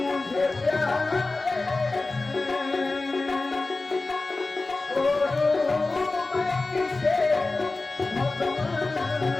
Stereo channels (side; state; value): right; quieter; 3.4 dB